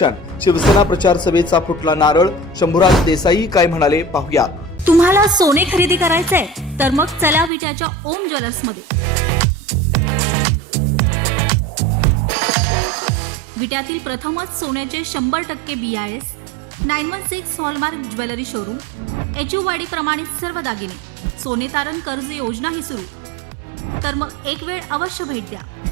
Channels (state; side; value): drops out; left; at 7.5 s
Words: शिवसेना प्रचार सभेचा फुटला नारळ. शंभूराज देसाई काय म्हणाले पाहूया. तुम्हाला सोने खरेदी करायचंय तर मग चला विट्याच्या ओम ज्वेलर्स मध्ये. विट्यातील प्रथमच सोन्याचे 100% BIS 916 hallmark jewellery showroom. HUID प्रमाणित सर्व दागिने. सोने तारण कर्ज योजनाही सुरू. तर मग एक वेळ अवश्य भेट द्या.